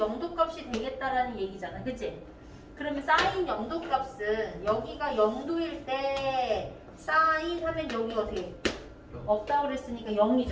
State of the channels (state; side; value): identical; both; correlation 1.00